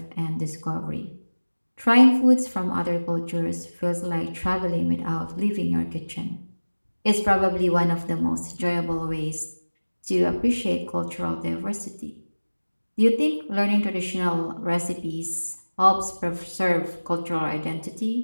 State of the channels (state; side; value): inverted; both; correlation -1.00